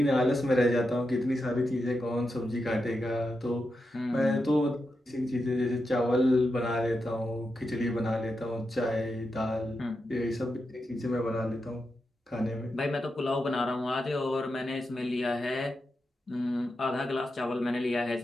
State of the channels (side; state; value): both; normal; correlation 0.87